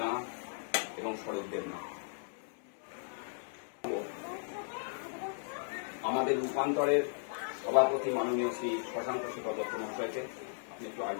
এবং শরৎ দেবনাথ। আমাদের রূপান্তরের সভাপতি মাননীয় শ্রী শশাঙ্ক শেখর দত্ত মহাশয়কে আপনি একটু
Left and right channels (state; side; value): silent; right; 54 dB below the other